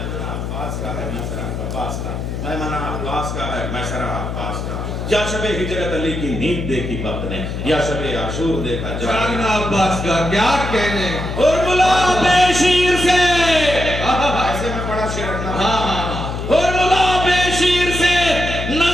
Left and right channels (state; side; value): noise; left; hum, 5 dB below the sound